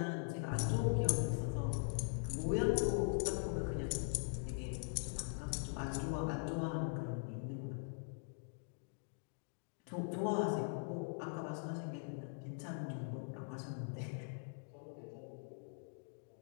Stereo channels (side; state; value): right; silent; digital silence